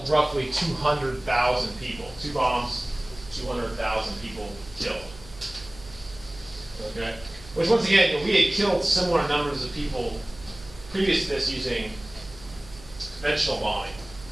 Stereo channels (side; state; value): right; noise; hum, 19 dB below the sound